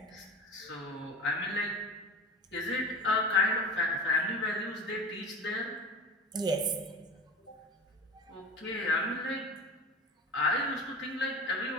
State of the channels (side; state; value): both; normal; correlation 0.32